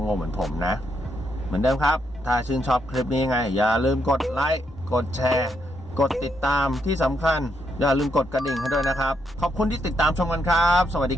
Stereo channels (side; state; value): both; normal; correlation 0.78